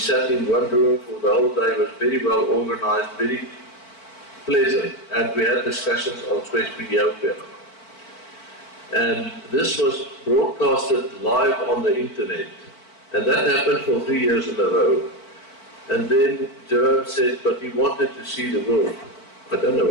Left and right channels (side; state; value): right; late; 4.5 ms